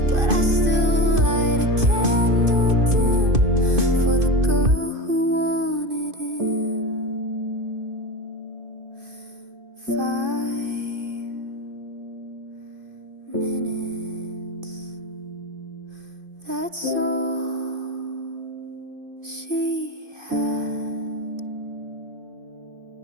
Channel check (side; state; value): left; late; 2.5 ms